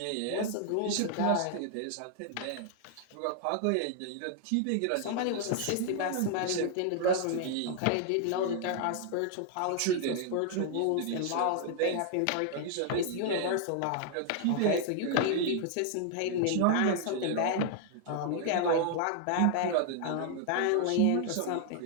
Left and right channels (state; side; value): different; both; correlation 0.00